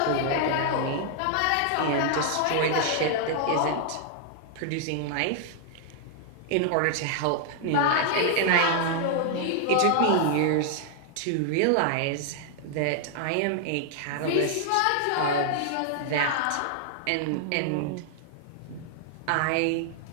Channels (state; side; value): different; both; correlation 0.00